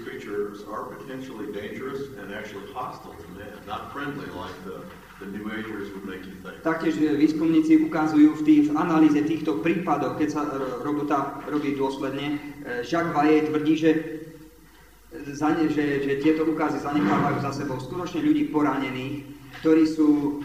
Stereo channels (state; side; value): identical; both; correlation 1.00